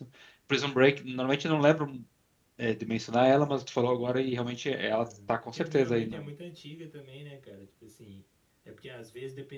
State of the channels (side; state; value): both; identical; correlation 1.00